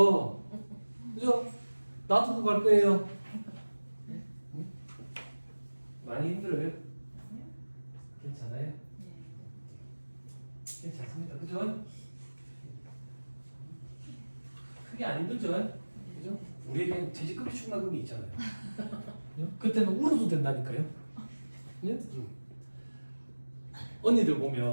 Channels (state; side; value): inverted; both; correlation -1.00